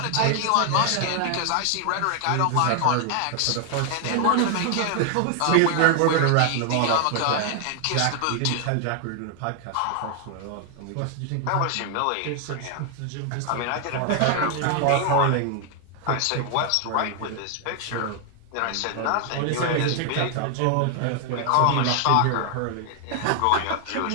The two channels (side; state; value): both; different; correlation 0.00